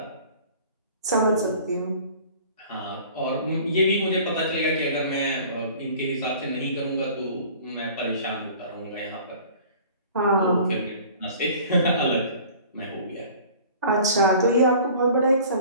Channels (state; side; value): inverted; both; correlation -0.47